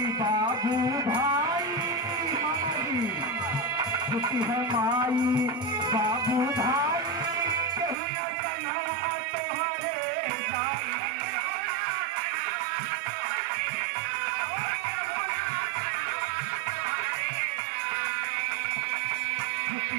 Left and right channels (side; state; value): left; drops out; at 8.0 s